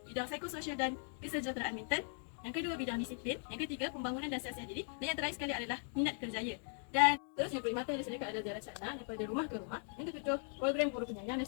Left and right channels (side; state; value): right; silent; 52 dB below the other